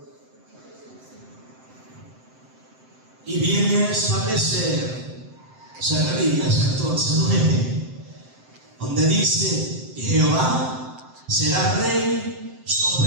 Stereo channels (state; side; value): late; left; 7.7 ms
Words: Y viene a establecer Zacarías 14:9, donde dice: Jehová será rey